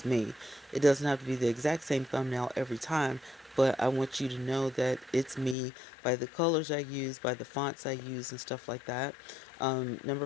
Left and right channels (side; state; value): right; drops out; at 5.6 s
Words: me. It doesn't have to be the exact same thumbnail every time, but I want you to know that it's me by the colors I use, by the fonts I use, and stuff like that.